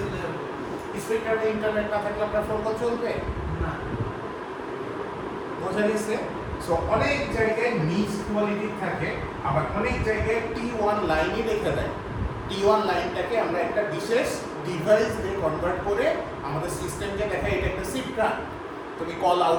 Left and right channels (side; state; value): both; identical; correlation 1.00